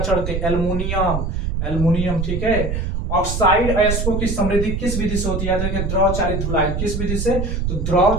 चढ़ती है, एल्युमिनियम। ठीक है, ऑक्साइड अयस्कों की समृद्धि किस विधि से होती है? द्रव चालित धुलाई। किस विधि से? तो द्रव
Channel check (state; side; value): noise; right; rumble, 2 dB below the sound